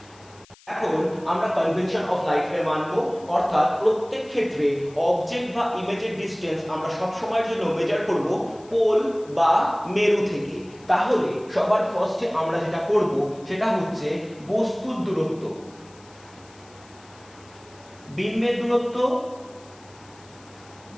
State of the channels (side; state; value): left; noise; hiss, 26 dB below the sound